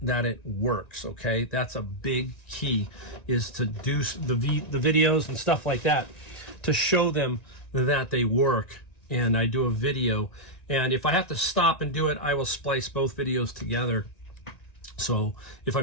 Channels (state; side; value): late; right; 1.9 ms